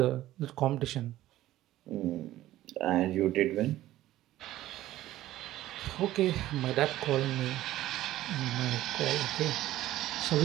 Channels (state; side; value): quieter; left; 14.8 dB